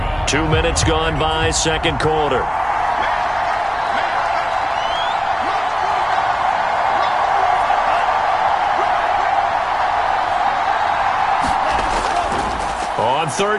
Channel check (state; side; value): identical; both; correlation 1.00